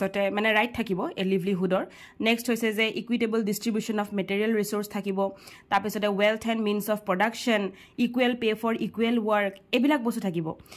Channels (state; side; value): identical; both; correlation 1.00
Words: মানে ৰাইট থাকিব এ লিভলিহুডৰ নেক্সট হৈছে যে equitable distribution of material resource থাকিব তাৰ পিছতে wealth and means of production equal pay for equal work এবিলাক বস্তু থাকিব